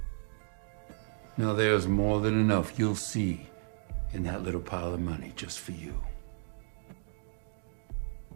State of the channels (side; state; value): left; silent; digital silence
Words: Now, there's more than enough you'll see in that little pile of money just for you.